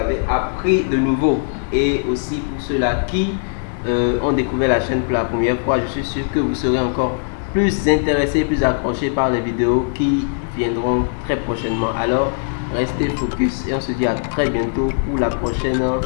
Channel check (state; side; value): silent; right; 66 dB below the other